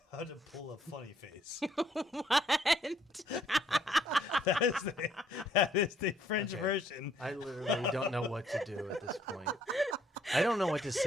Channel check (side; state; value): both; normal; correlation 0.66